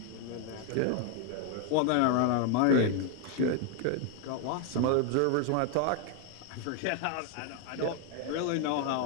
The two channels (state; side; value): different; both; correlation 0.01